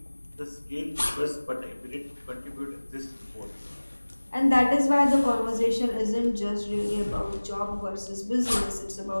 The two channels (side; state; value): both; inverted; correlation -1.00